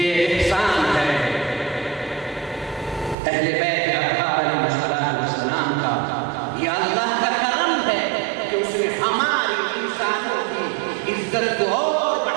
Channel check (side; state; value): left; drops out; at 3.2 s